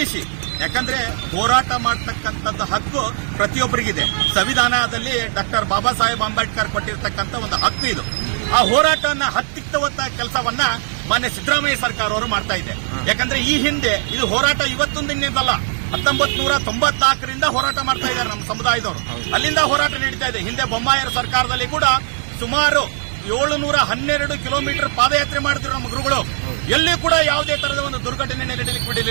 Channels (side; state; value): left; silent; 59 dB below the other